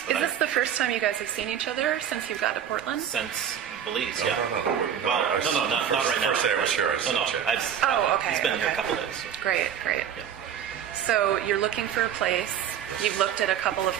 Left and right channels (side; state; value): left; quieter; 9.1 dB